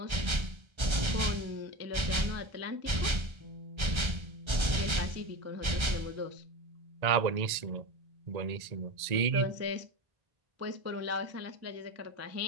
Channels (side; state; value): left; late; 1.3 ms